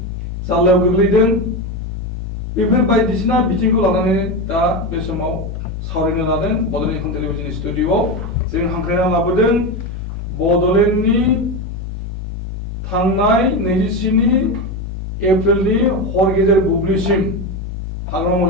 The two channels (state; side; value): normal; both; correlation 0.16